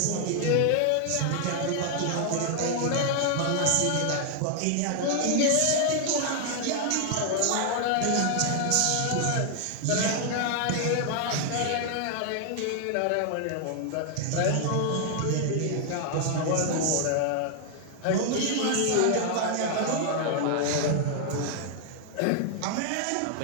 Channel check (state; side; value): different; both; correlation 0.00